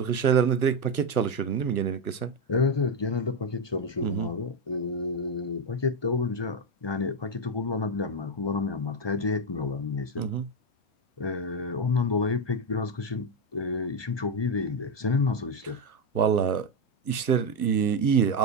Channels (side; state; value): right; late; 1.2 ms